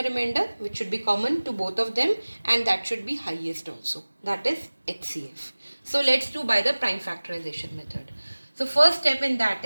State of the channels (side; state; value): both; inverted; correlation -1.00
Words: remainder, which should be common to both of them, and that should be highest also. That is HCF. So let's do by the prime factorization method. So first step in that